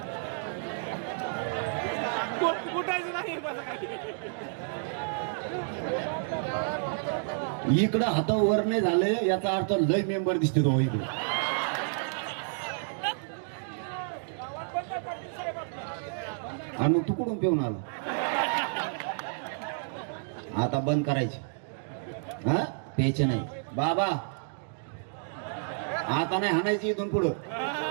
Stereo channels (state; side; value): silent; left; digital silence